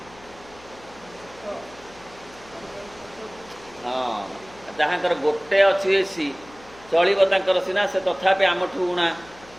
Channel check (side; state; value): left; noise; hum, 23 dB below the sound